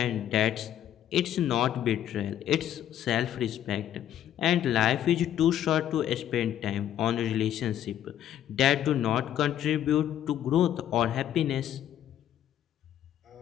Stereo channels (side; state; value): right; quieter; 11.1 dB